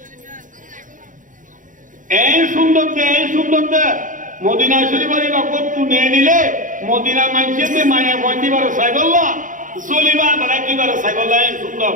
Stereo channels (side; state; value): left; late; 0.38 ms